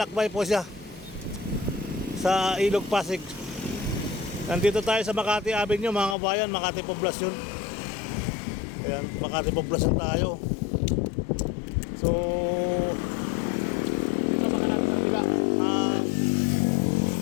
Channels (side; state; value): right; drops out; at 6.2 s